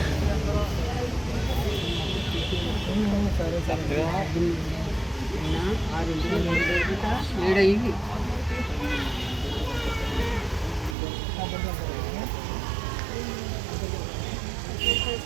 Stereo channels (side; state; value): left; drops out; at 11.0 s